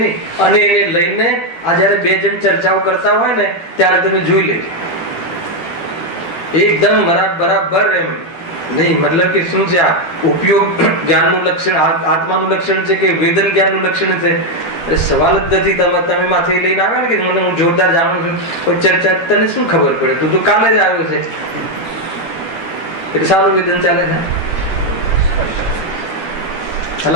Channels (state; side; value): late; right; 12 ms